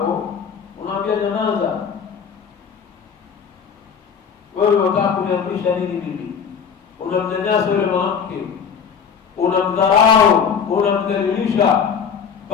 unaambia janaza, wewe unataka kuniamrisha nini mimi? Unamnyanyasa yule mwanamke, unamdharau, unamdhalilisha,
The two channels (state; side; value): quieter; right; 6.9 dB